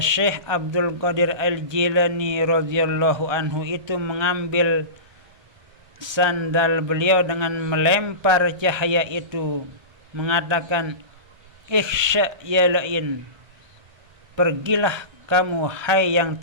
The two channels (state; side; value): late; left; 1.2 ms